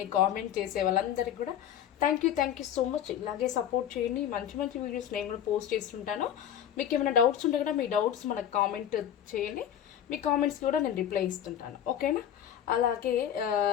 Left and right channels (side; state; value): right; quieter; 10.1 dB